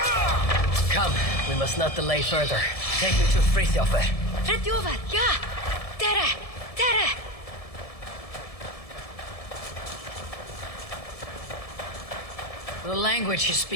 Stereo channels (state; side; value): late; right; 1.7 ms